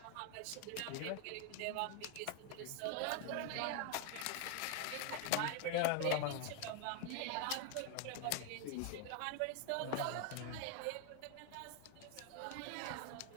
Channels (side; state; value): both; different; correlation 0.00